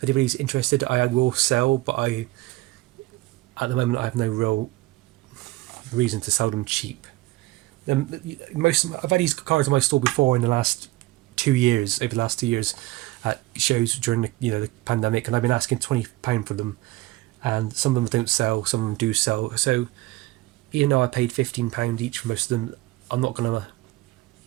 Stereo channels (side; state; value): left; quieter; 19.3 dB